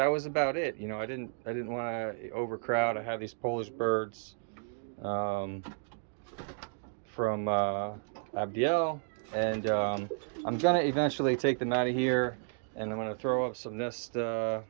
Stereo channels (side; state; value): left; silent; digital silence